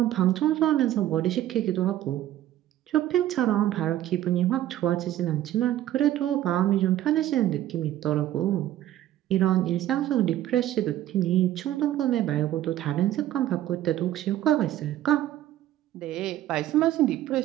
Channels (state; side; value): quieter; left; 13.0 dB